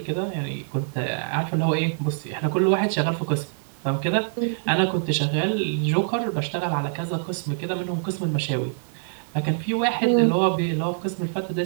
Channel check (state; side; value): silent; left; 62 dB below the other